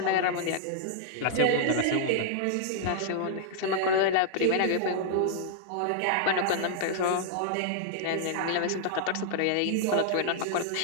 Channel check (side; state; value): both; different; correlation -0.01